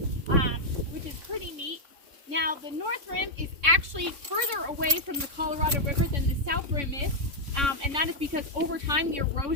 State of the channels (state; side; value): late; left; 3.6 ms